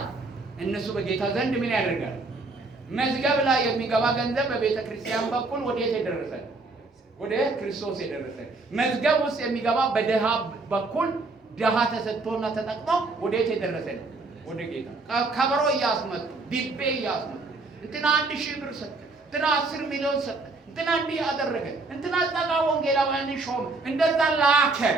እነሱ በጌታ ዘንድ ምን ያደርጋል? መዝገብ ላይ የሚገባ ገንዘብ በቤተክርስቲያን በኩል ወዴት የደረሰ? ወደ ክርስቶስ የደረሰ። መዝገብ ውስጥ የሚገባ በደሃ በኩል ደሃ ተሰጥቶና ተጠቅሞ ወዴት የደረሰ ነው? ወደ ጌታ። ከበሮ እያስመጡ ዲቤ እያስመጡ እንትና 1000 ብር ሰጠ፣ እንትና 10 ሚሊዮን ሰጠ፣ እንትና እንዲህ ያደረገ፣ እንትና ጸጋ ወንጌላውያን ሾም፣ እንደዛ ላከ።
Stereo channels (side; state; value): left; quieter; 3.5 dB